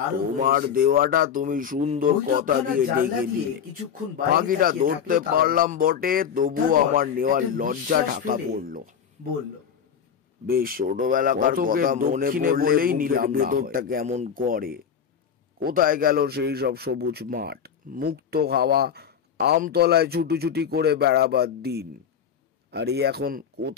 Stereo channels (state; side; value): quieter; right; 7.7 dB